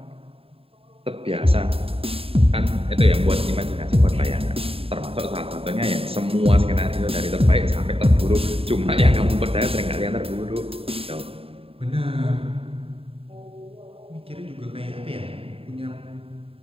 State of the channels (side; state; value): left; late; 0.27 ms